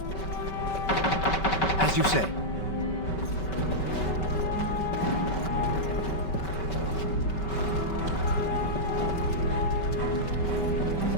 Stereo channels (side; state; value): right; late; 5.2 ms